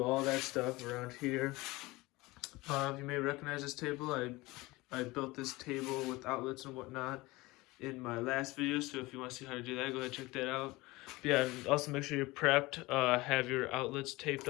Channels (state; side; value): quieter; right; 21.3 dB